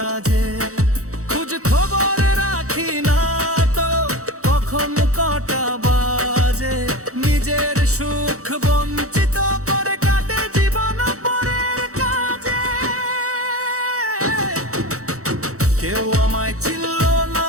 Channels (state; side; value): late; left; 0.65 ms